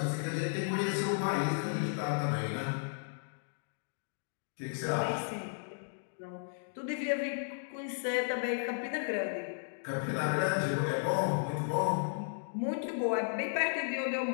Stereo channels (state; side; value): silent; right; digital silence